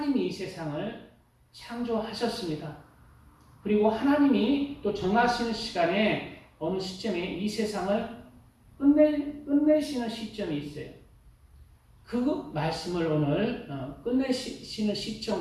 이 세상을 창조하셨습니다. 그리고 하나님이 또 정하시는 시간에 어느 시점에 이 세상을 끝내시는 시점이 있어요. 그 말씀을 오늘 끝내시는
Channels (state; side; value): identical; both; correlation 1.00